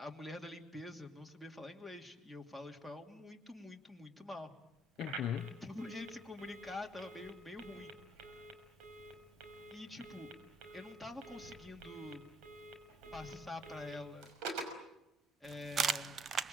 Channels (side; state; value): both; normal; correlation 0.67